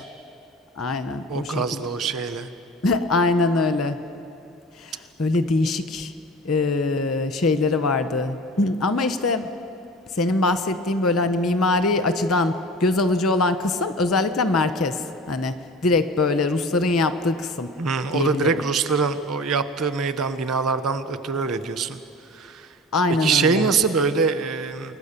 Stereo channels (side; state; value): both; normal; correlation 0.38